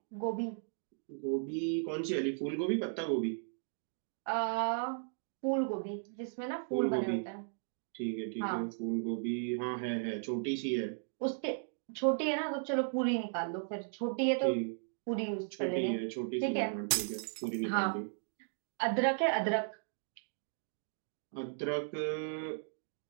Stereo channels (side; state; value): left; silent; digital silence